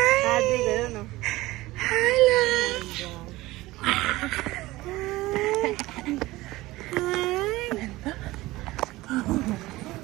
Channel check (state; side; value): quieter; left; 18.8 dB